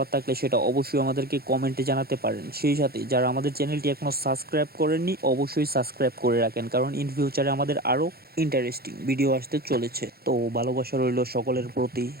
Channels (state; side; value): late; left; 0.45 ms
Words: থাকলে সেটা অবশ্যই আমাদেরকে কমেন্টে জানাতে পারেন। সেই সাথে যারা আমাদের চ্যানেলটি এখনও সাবস্ক্রাইব করেননি, অবশ্যই সাবস্ক্রাইব করে রাখেন, কারণ ইন ফিউচারে আমাদের আরও ইন্টারেস্টিং ভিডিও আসতে চলেছে। তো ভালোবাসা রইল সকলের প্রতি।